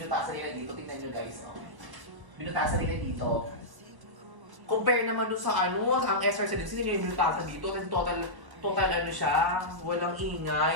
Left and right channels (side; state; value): left; late; 1.1 ms